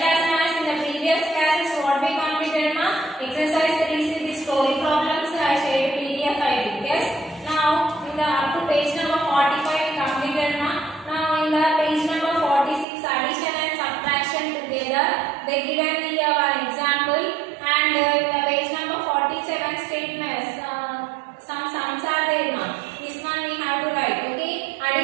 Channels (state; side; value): drops out; left; at 12.9 s